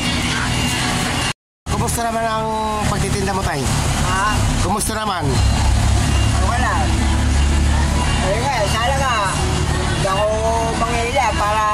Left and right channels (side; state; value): both; identical; correlation 1.00